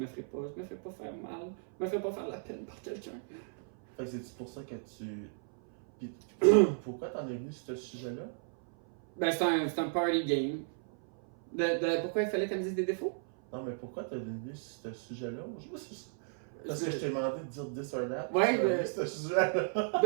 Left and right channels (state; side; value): silent; left; 55 dB below the other